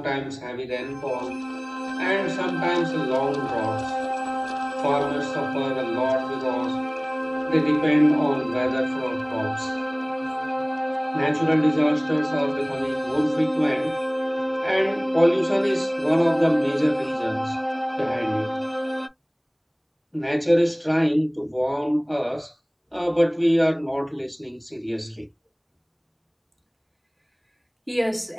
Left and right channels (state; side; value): identical; both; correlation 1.00